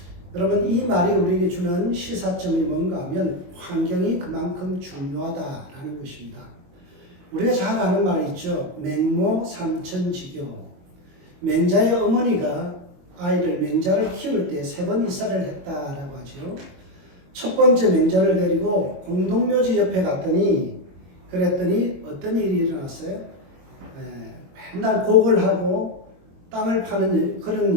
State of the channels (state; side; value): late; left; 22 ms